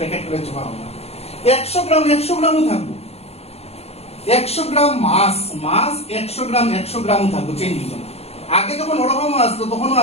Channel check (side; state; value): right; late; 0.30 ms